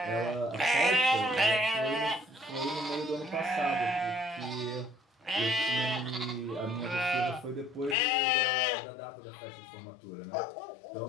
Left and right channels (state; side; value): drops out; right; at 8.0 s